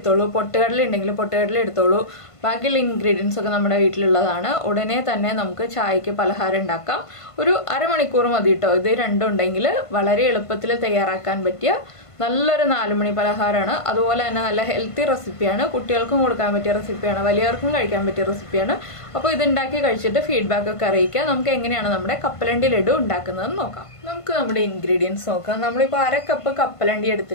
പൊട്ടുകടല ഉണ്ടെങ്കിൽ പൊട്ടുകടല എടുത്തോളൂ. ബാക്കിയുള്ള ഇൻഗ്രീഡിയൻസ് ഒക്കെ നമ്മുടെ വീട്ടിലുള്ളതാണ്. ഉടനെ തന്നെ നമുക്ക് ചായക്ക് പലഹാരം ഉണ്ടാക്കാം. ഒരു അരമണിക്കൂർ മതി കേട്ടോ. ഇത് രണ്ടും ഉണ്ടെങ്കിൽ വളരെ എളുപ്പത്തിൽ തയ്യാറാക്കാൻ പറ്റിയ നല്ലൊരു 4 മണി പലഹാരമാണ്. അതുപോലെ തന്നെ നല്ല ഹെൽത്തി റെസിപ്പിയാണ്. കുട്ടികൾക്കും കൊടുക്കാൻ പറ്റിയ റെസിപ്പിയാണ്, വലിയവർക്കും കഴിക്കാൻ പറ്റിയ റെസിപ്പിയാണ്. അപ്പോൾ ഇത് ഉണ്ടാക്കി കഴിച്ചിട്ട് ഫീഡ്ബാക്ക് ഒക്കെ അറിയിക്കുക. നമുക്ക് എങ്ങനെയാണ് നമ്മുടെ കപ്പലണ്ടി ലഡു ഉണ്ടാക്കുന്നതെന്ന് നോക്കാം. നമുക്ക് നമ്മുടെ ഇൻഗ്രീഡിയൻസ് നോക്കാം. നമ്മളിപ്പോൾ 1/2 കപ്പ് കപ്പലണ്ടി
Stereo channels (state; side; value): late; right; 1.5 ms